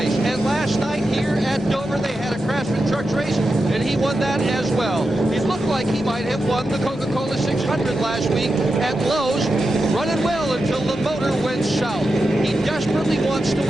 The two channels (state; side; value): normal; both; correlation 0.89